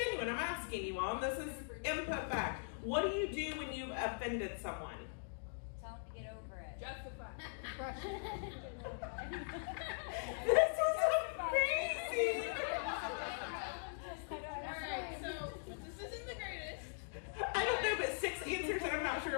I'm asking you all. This is input back. What do you do when you've offended someone? Tell them to get over it. Justify. This is amazing. Alright, so, this isn't the greatest. I don't know, but 6 answers, and I'm not sure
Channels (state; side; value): silent; right; digital silence